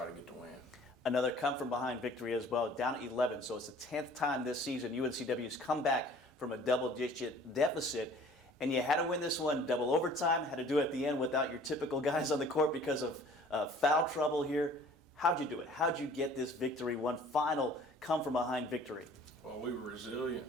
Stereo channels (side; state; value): both; normal; correlation 0.51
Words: to get the win. Another come-from-behind victory as well, down 11. So it's the 10th time this season UNCW's come back from a double-digit deficit. And you had to win this one double overtime, had to do it at the end without your typical guys on the court because of foul trouble here. How'd you do it? How'd you get this victory, one final come-from-behind victory? Well, we were resilient.